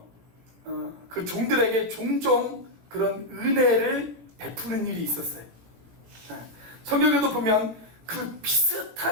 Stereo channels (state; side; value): late; left; 17 ms